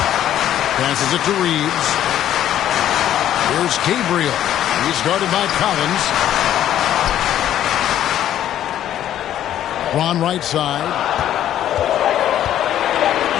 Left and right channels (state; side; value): quieter; right; 11.5 dB